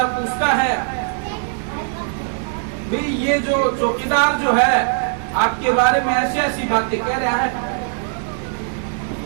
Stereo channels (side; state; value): left; silent; digital silence